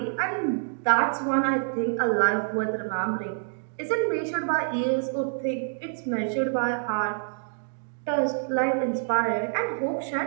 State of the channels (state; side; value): silent; left; digital silence